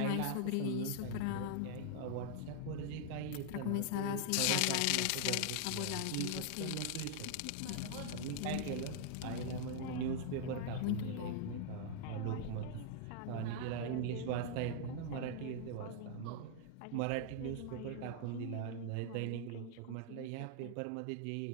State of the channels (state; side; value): different; both; correlation 0.00